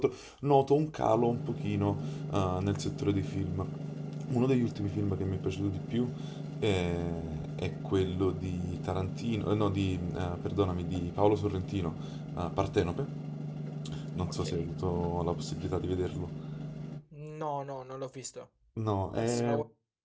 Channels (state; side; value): identical; both; correlation 1.00